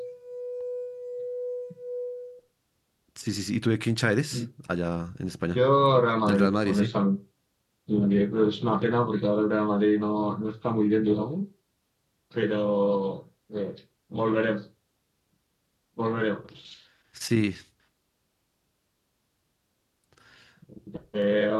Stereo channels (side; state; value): both; identical; correlation 1.00